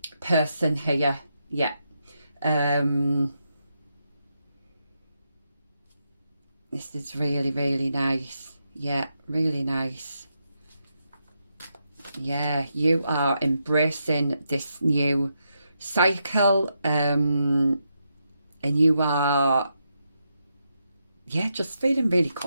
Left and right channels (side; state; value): both; inverted; correlation -0.83